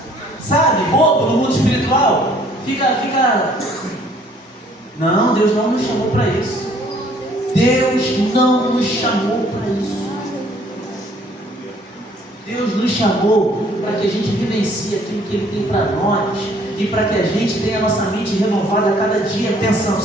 Sabe? Bobo no mundo espiritual. Fica. Não, Deus não nos chamou para isso. Deus não nos chamou para isso. Deus nos chamou para que a gente vivencie aquilo que Ele tem para nós. E para que a gente tenha a nossa mente renovada a cada dia, pensando:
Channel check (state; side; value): normal; both; correlation 0.60